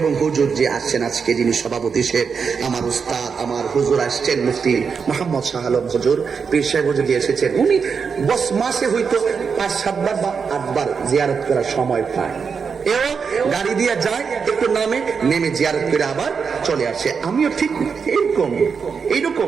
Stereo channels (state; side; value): quieter; left; 5.9 dB